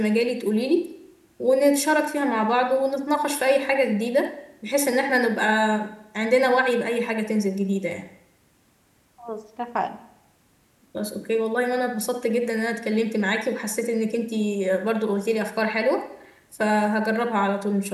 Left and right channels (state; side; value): identical; both; correlation 1.00